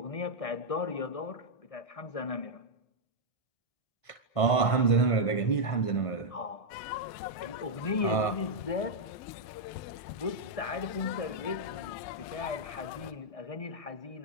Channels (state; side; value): late; right; 1.5 ms